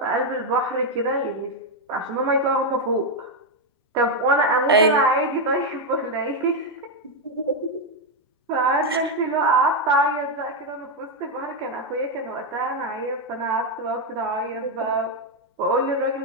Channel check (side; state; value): both; normal; correlation 0.03